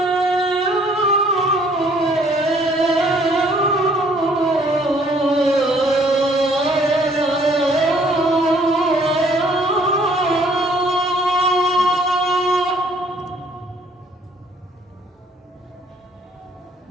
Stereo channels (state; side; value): normal; both; correlation 0.61